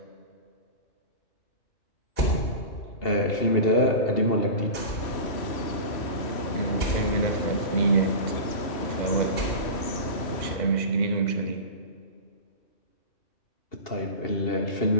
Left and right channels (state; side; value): late; right; 3.1 ms